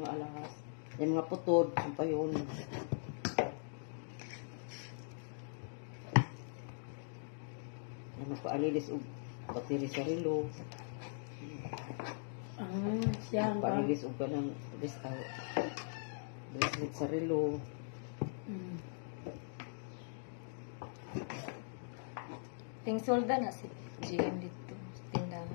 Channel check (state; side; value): silent; right; digital silence